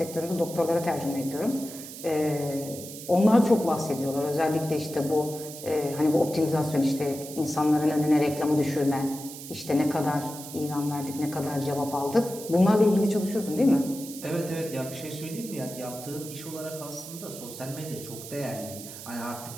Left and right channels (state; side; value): noise; right; hiss, 12 dB below the sound